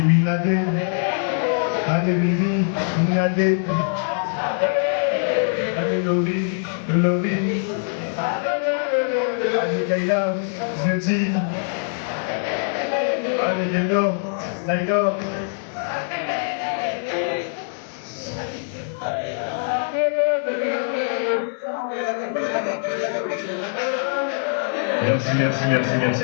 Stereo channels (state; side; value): silent; right; 64 dB below the other